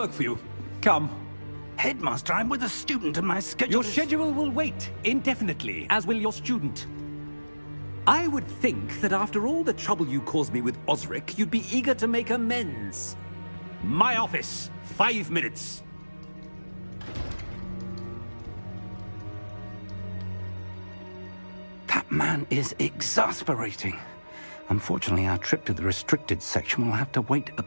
for you. Come. Headmaster, I'm with a student and my schedule Your schedule will wait indefinitely, as will your student. I would think that after all the trouble you caused me with Osric, you'd be eager to make amends. My office. 5 minutes. That man is exasperating. Unfortunately, our trip to the restricted section will have to wait a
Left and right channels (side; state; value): both; inverted; correlation -1.00